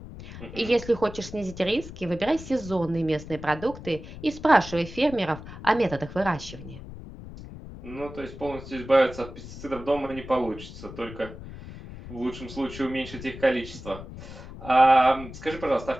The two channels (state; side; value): noise; left; rumble, 13 dB below the sound